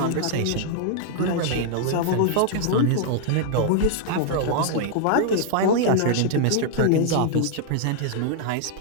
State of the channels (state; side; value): different; both; correlation -0.01